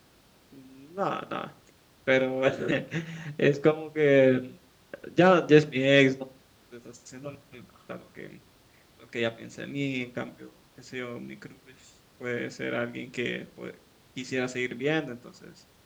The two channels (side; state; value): both; identical; correlation 1.00